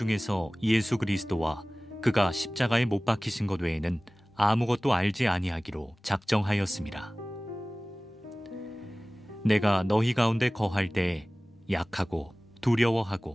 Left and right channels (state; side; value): normal; both; correlation 0.98